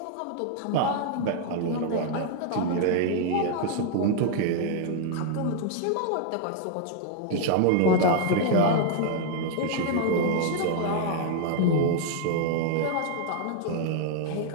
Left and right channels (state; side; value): different; both; correlation 0.00